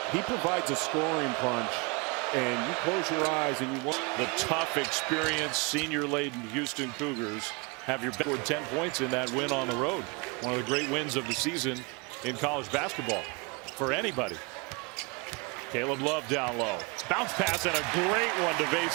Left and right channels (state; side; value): quieter; left; 29.4 dB